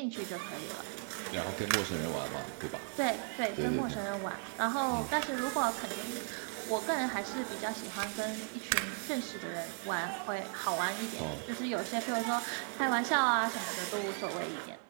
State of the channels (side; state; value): left; silent; 54 dB below the other